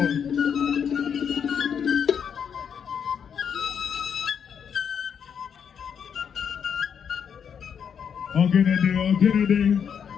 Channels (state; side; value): quieter; right; 7.5 dB